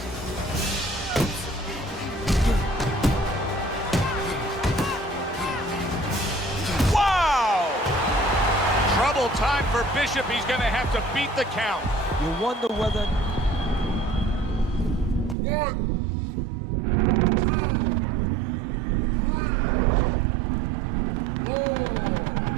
Wow! Trouble time for Bishop. He's going to have to beat the count. You wonder whether...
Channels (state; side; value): drops out; left; at 15.4 s